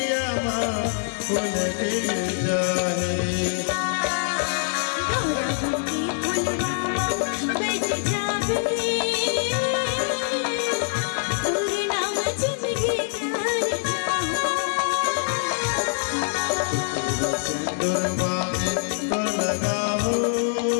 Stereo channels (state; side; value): silent; right; 58 dB below the other